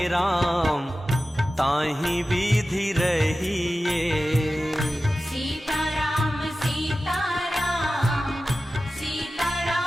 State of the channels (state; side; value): normal; both; correlation 0.94